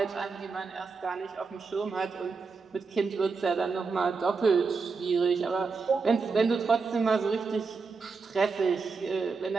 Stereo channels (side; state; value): left; quieter; 4.7 dB